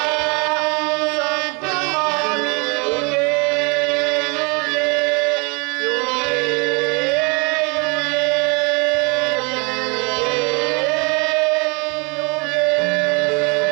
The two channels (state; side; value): quieter; left; 30.9 dB